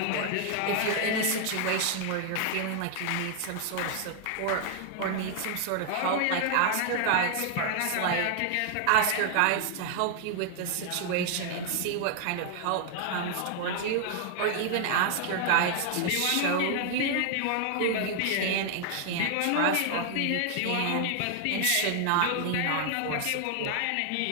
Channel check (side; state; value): both; different; correlation 0.00